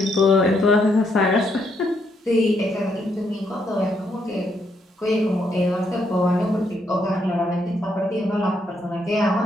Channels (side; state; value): both; normal; correlation 0.75